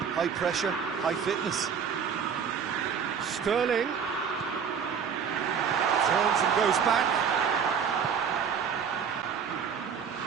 high pressure, high fitness. Sterling turns and goes back.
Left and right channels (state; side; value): quieter; left; 7.0 dB